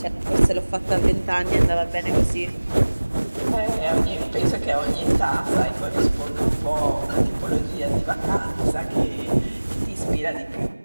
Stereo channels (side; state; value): both; inverted; correlation -1.00